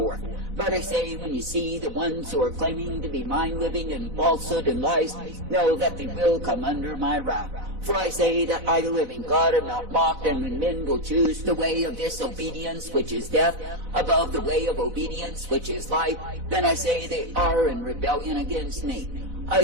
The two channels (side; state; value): left; late; 4.0 ms